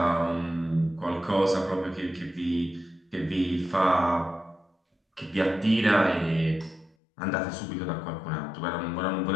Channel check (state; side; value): drops out; right; at 7.0 s